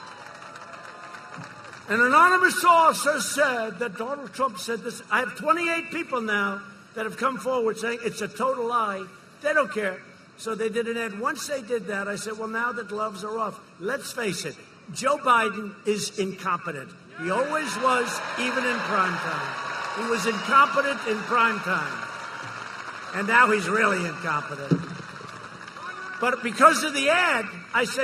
an anonymous source has said that Donald Trump said this. I have 28 people now that have come forward saying it's a total lie. They don't care. So they did an ad. Once they did that, I said, well, now the gloves are off. Let's face it, Joe Biden is incompetent. He always was, even in prime time. He was incompetent in prime time. And now he's really incompetent. But because of the ad, I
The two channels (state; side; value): identical; both; correlation 1.00